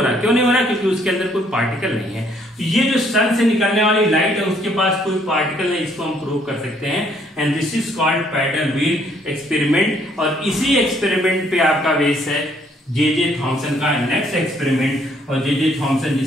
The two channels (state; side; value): normal; both; correlation 0.66